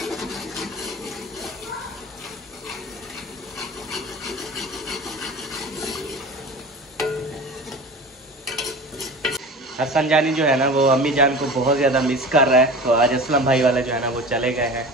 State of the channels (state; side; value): normal; both; correlation 0.35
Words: हसन जानी जो है ना वो अम्मी जान को बहुत ज़्यादा मिस कर रहा है, तो आज असलम भाई वाले जो है ना वो चले गए हैं